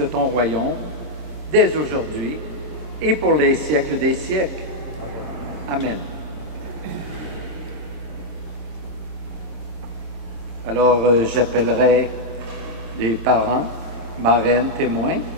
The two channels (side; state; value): left; late; 26 ms